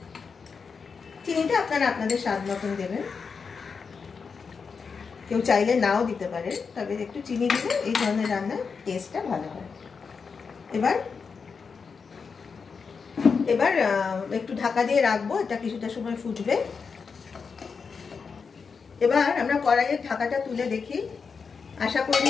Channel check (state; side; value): quieter; right; 5.5 dB